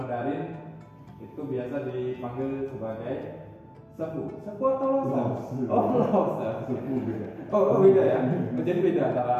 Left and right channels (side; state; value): both; identical; correlation 1.00